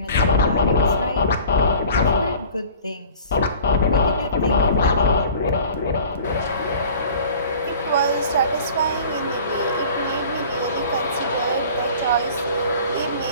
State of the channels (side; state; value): both; inverted; correlation -0.45